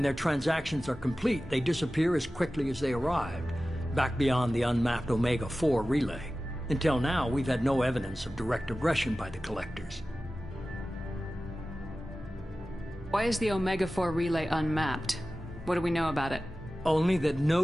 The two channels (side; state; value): both; normal; correlation 0.96